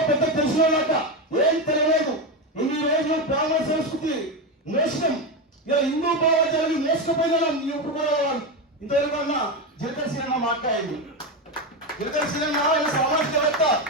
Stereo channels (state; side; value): normal; both; correlation 0.13